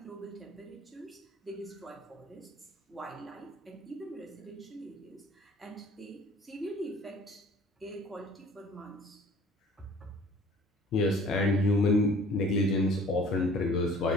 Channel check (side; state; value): both; normal; correlation 0.50